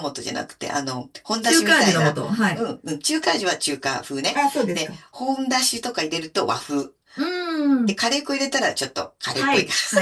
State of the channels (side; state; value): both; identical; correlation 1.00